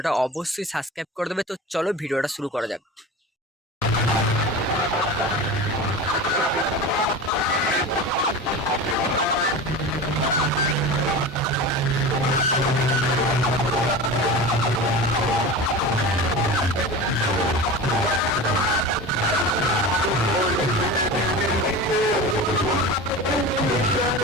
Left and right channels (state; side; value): normal; both; correlation 0.30